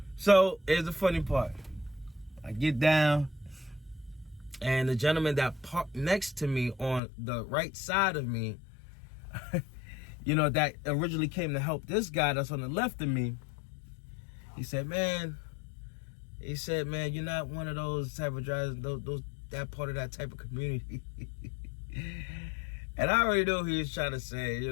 So here's the funny part. I get down, and the gentleman that parked next to me on the right side of me, you know, that originally came to help this guy that's on the left of me, he said, man, you're not one of those type of drivers, that part of that type of community. And I already know who he was trying to say, you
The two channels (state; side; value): drops out; right; at 7.0 s